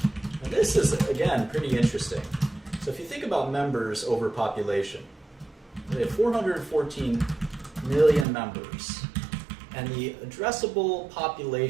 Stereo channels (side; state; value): left; drops out; at 8.2 s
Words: And this is, again, pretty interesting. So if you think about members over population, they have 414 million members. And the addressable